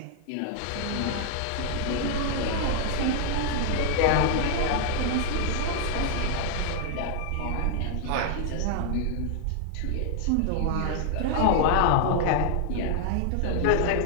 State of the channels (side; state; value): both; different; correlation 0.00